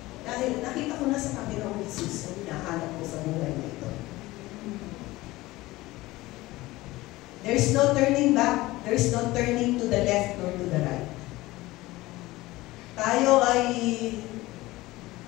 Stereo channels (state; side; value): quieter; right; 18.9 dB